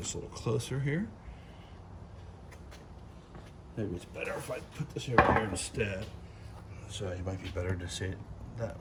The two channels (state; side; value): identical; both; correlation 1.00